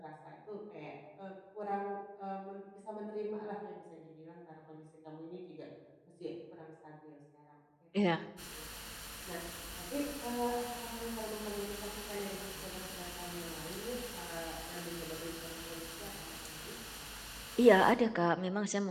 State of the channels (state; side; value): identical; both; correlation 1.00